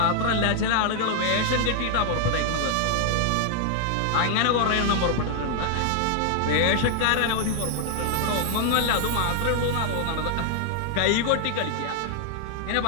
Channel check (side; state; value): both; different; correlation 0.00